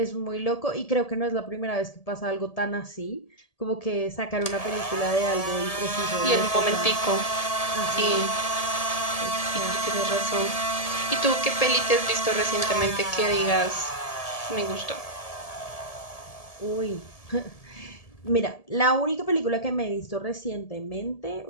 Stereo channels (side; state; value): right; late; 1.7 ms